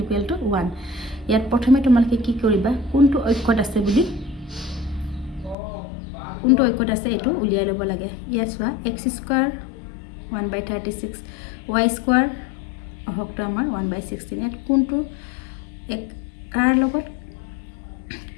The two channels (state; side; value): drops out; right; at 5.6 s